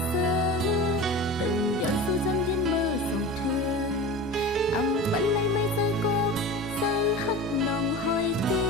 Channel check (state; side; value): normal; both; correlation 0.32